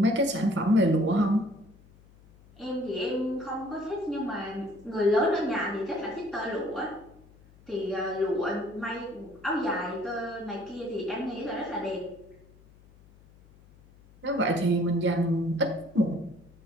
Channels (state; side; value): noise; left; hum, 25 dB below the sound